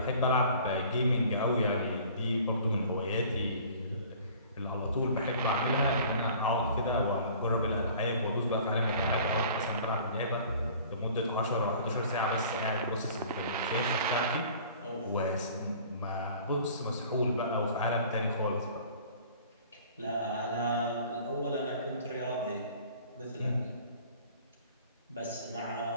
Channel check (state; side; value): inverted; both; correlation -0.49